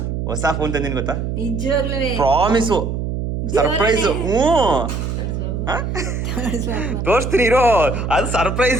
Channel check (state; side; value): noise; right; hum, 3 dB below the sound